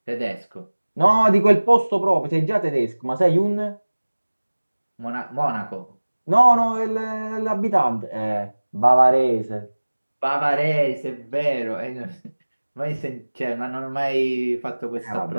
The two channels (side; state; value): both; inverted; correlation -1.00